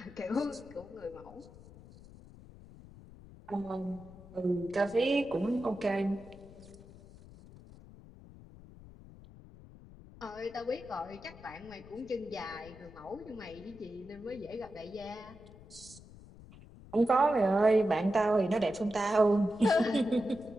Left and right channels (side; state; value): left; noise; rumble, 19 dB below the sound